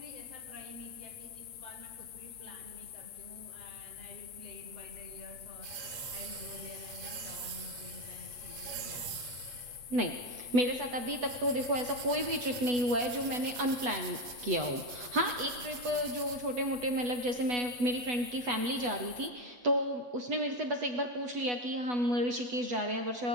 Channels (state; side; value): late; left; 8.1 ms